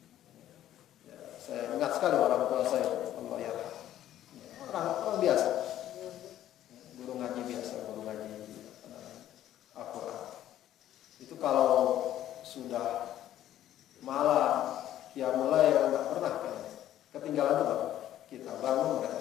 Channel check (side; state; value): right; quieter; 12.3 dB